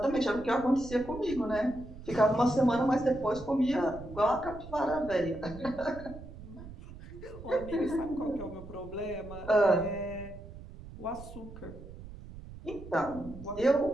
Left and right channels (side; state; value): right; noise; rumble, 14 dB below the sound